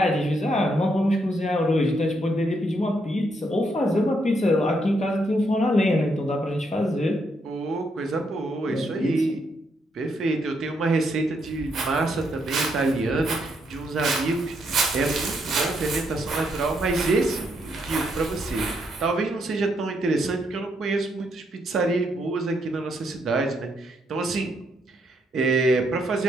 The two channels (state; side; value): normal; both; correlation 0.76